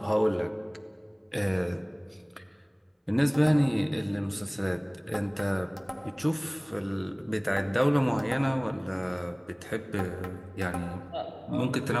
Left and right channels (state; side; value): identical; both; correlation 1.00